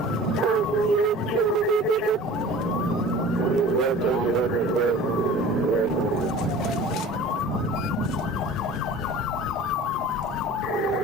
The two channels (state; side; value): normal; both; correlation 0.42